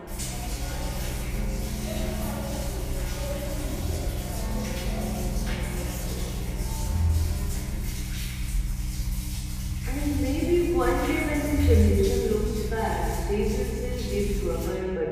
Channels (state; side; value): identical; both; correlation 1.00